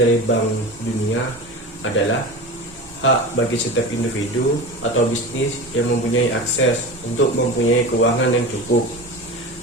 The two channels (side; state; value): both; normal; correlation 0.29